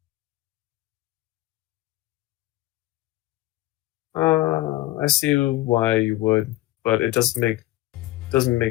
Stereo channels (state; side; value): quieter; right; 17.1 dB